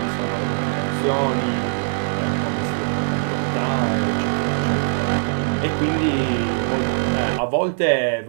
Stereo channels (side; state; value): left; silent; digital silence